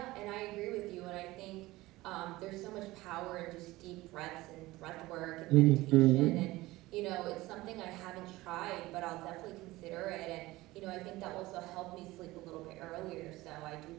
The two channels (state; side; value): quieter; left; 19.0 dB